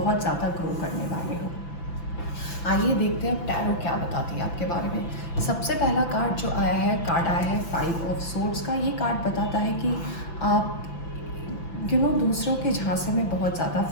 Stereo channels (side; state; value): right; late; 5.9 ms